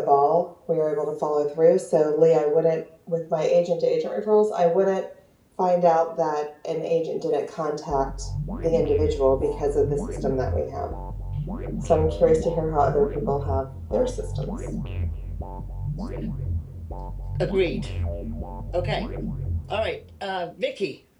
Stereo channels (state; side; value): identical; both; correlation 1.00